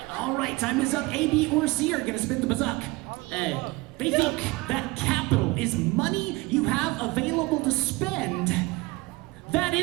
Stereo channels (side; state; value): left; quieter; 23.0 dB